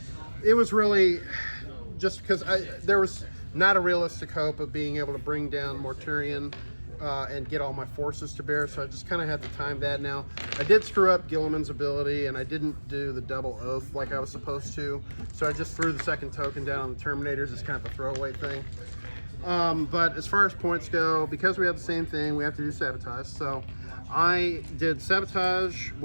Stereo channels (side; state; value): both; inverted; correlation -1.00